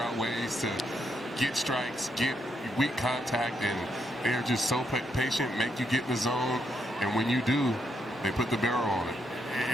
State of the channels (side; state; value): both; normal; correlation 0.78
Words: ways to get strikes, get weak contact, and they're just so patient, make you get in the zone, and when you do, they put the barrel on it.